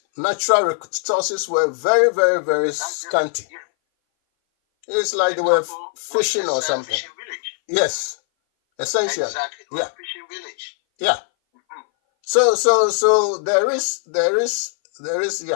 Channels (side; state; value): right; silent; 60 dB below the other